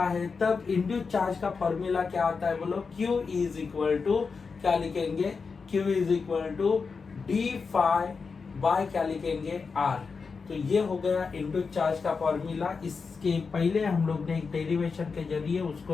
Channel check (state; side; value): quieter; right; 5.0 dB